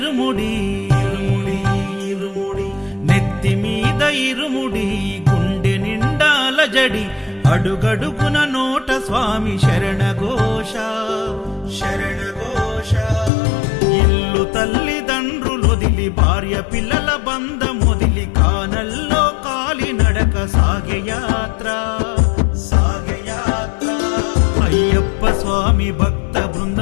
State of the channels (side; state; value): right; drops out; at 13.3 s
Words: ఇరుముడి ఇరుముడి నెత్తి మీద ఇరుముడి గుండె నిండాల జడి అడుగడుగున నోట స్వామి శరణఘోష శరణఘోష ఇల్లు తల్లిదండ్రులొదిలి భార్య పిల్లల బంధమొదిలి కానల్లో కాలి నడక సాగే యాత్ర అయ్యప్ప స్వామి భక్త